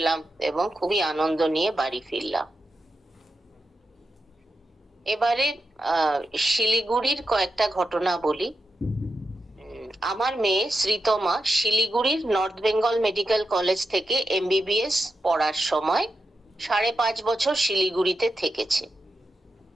এবং খুবই আনন্দ নিয়ে বাড়ি ফিরলাম। এবারে শিলিগুড়ির কয়েকটা ঘটনা বলি। আমার মেয়ে শ্রীতমা শিলিগুড়ির নর্থ বেঙ্গল মেডিকেল কলেজ থেকে এমবিবিএস পড়ার সময় 5.5 বছর শিলিগুড়িতে থেকেছে।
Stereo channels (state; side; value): normal; both; correlation 0.88